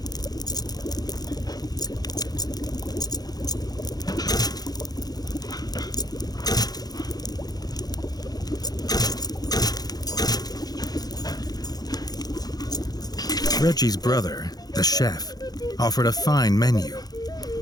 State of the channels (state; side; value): late; right; 0.19 ms